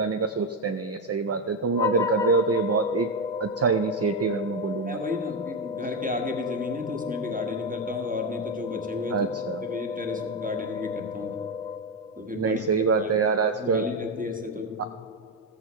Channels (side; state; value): both; normal; correlation 0.09